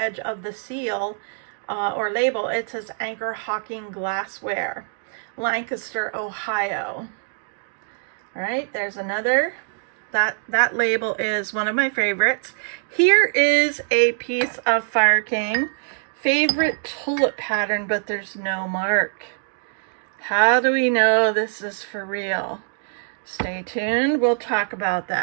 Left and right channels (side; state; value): left; silent; digital silence